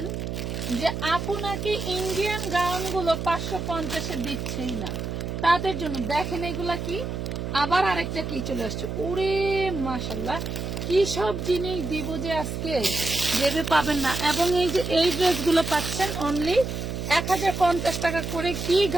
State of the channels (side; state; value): right; noise; hum, 4 dB below the sound